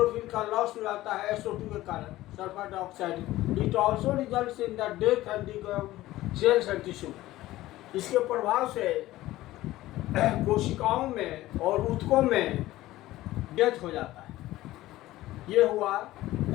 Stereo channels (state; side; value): quieter; right; 16.3 dB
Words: का लॉस हो जाता है SO2 के कारण, sulphur dioxide. It also results in the death and cells and tissue. इसके प्रभाव से कोशिकाओं में और ऊतकों में डेथ हो जाता है। ये हुआ